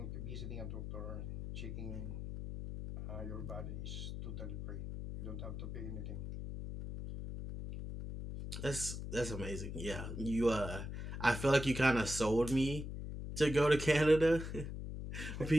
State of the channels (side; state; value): left; noise; hum, 6 dB below the sound